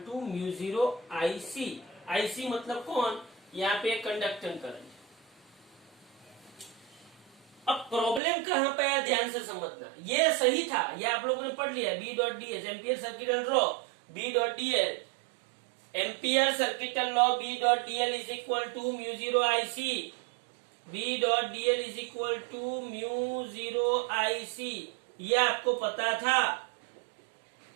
to mu zero IC. IC मतलब कौन? यहाँ पे कंडक्टेंस करंट। अब प्रॉब्लम कहां पे आया, ध्यान से समझना। ये सही था, ये आप लोगों ने पढ़ लिया। B dot DL ampere circuital law, B dot DL ampere circuital law, B dot DL is equal to mu zero IC. B dot DL is equal to mu zero IC, ये आपको पता था।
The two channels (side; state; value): left; drops out; at 8.2 s